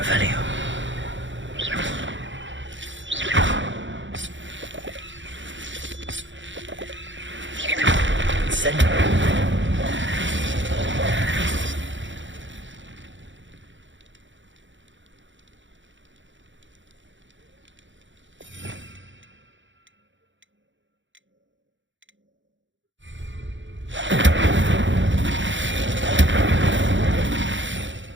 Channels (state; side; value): late; left; 0.54 ms